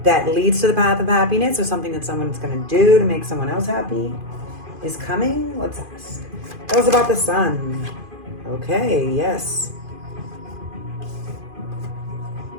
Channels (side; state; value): left; late; 2.5 ms